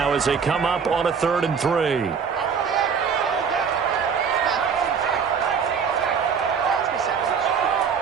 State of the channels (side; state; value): left; quieter; 6.4 dB